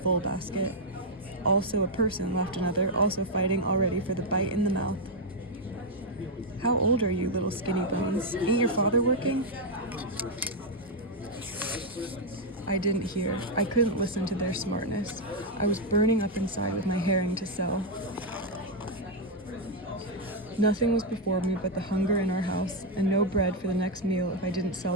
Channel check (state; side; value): normal; both; correlation 0.00